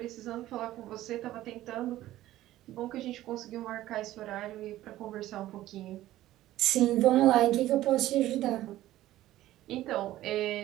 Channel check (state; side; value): quieter; left; 14.7 dB